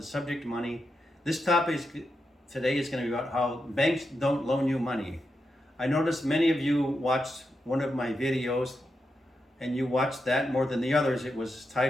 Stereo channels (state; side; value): normal; both; correlation 0.86